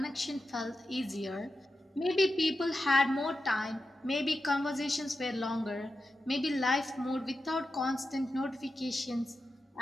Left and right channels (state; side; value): normal; both; correlation 0.90